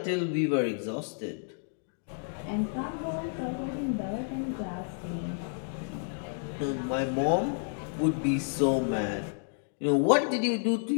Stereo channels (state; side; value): silent; right; digital silence